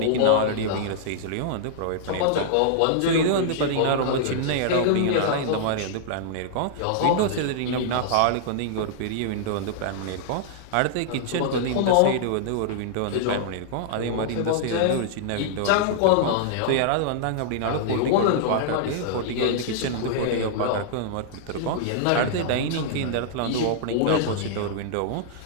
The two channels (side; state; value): both; different; correlation -0.01